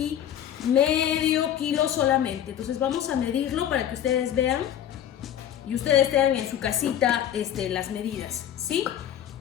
medio kilo solamente. Entonces vamos a medirlo para que ustedes vean y ustedes tengan en su casita las medidas, ¿sí?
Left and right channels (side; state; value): right; quieter; 10.5 dB